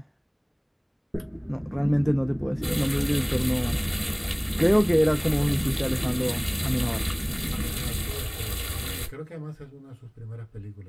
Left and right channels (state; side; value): identical; both; correlation 1.00